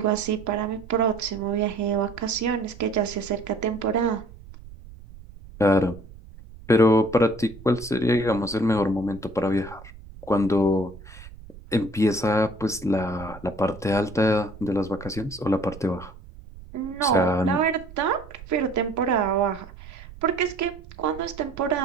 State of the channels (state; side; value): noise; right; rumble, 17 dB below the sound